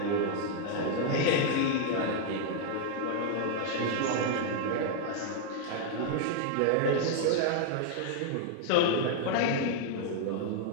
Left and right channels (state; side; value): different; both; correlation 0.00